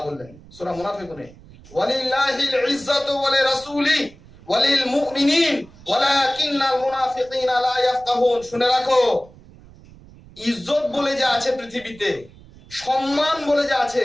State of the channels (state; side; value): noise; right; rumble, 22 dB below the sound